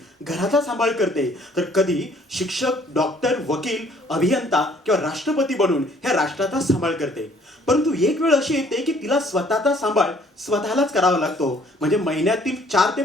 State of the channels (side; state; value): both; normal; correlation 0.60